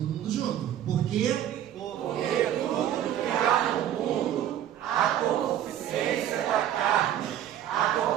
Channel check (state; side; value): quieter; left; 11.1 dB